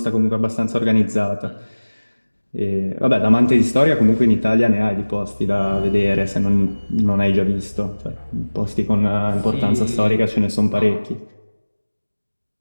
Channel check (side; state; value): both; inverted; correlation -1.00